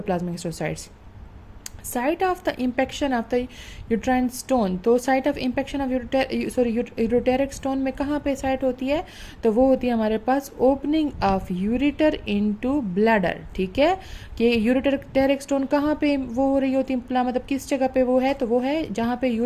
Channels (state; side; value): identical; both; correlation 1.00